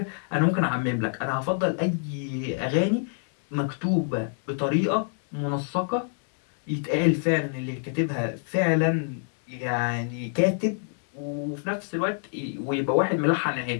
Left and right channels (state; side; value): silent; right; 59 dB below the other